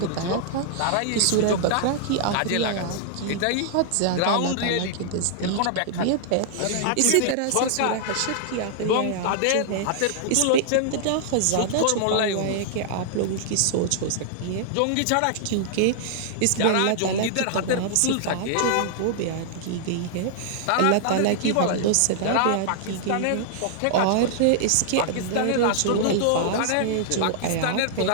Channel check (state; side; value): different; both; correlation -0.01